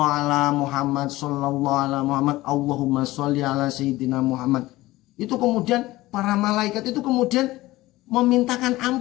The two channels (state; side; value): quieter; right; 18.2 dB